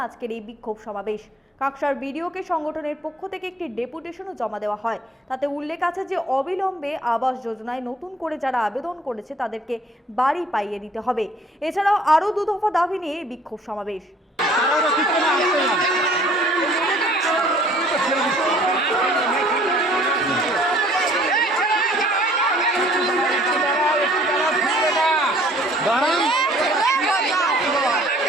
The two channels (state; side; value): normal; both; correlation 0.56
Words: আজকের এই বিক্ষোভ সমাবেশ। কাকসার বিডিওকে সংগঠনের পক্ষ থেকে একটি ডেপুটেশনও জমা দেওয়া হয়। তাতে উল্লেখ আছে যে অবিলম্বে আবাস যোজনায় নতুন করে যারা আবেদন করেছে তাদেরকে বাড়ি পাইয়ে দিতে হবে। এছাড়াও আরও দু দফা দাবি নিয়ে বিক্ষোভ সমাবেশ।